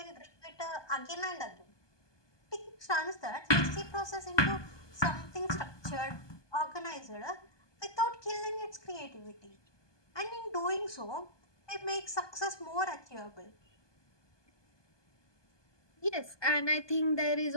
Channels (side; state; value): right; late; 1.2 ms